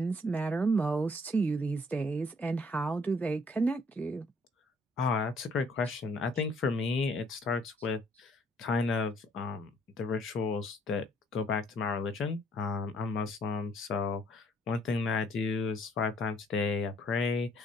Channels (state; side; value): normal; both; correlation 0.64